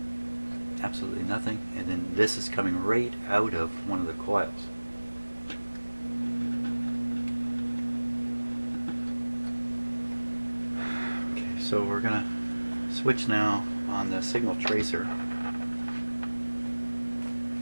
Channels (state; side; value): inverted; both; correlation -1.00